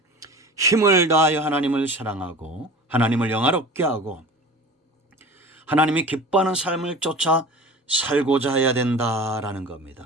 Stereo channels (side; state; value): both; normal; correlation 0.38